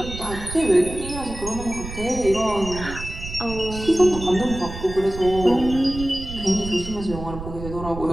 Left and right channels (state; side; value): noise; right; rumble, 10 dB below the sound